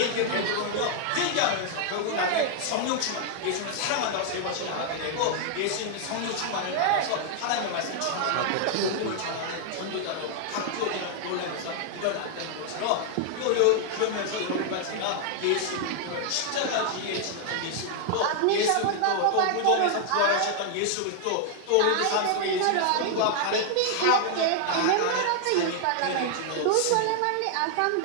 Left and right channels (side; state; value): both; different; correlation 0.00